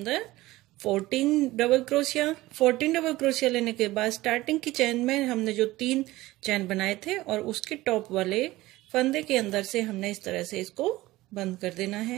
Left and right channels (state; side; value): quieter; left; 18.1 dB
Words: 14 डबल क्रोशिया। 14 डबल क्रोशिया लेने के बाद स्टार्टिंग की चैन में हमने जो 3 चैन बनाए थे और उसके टॉप वाले फंदे के अंदर से हमने इस तरह से इसको बंद कर देना